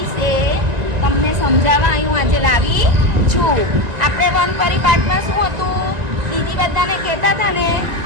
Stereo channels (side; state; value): left; late; 1.9 ms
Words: તમને સમજાવવા હું આજે લાવી છું. આપણે વનપરી પાઠમાં શું હતું, દીદી બધાને કહેતા હતા ને